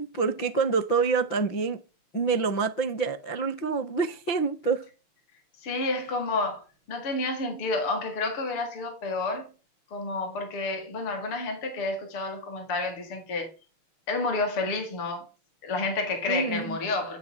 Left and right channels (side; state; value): right; late; 5.9 ms